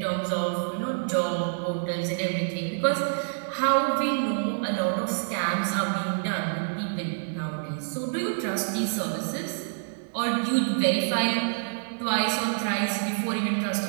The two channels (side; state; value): left; silent; digital silence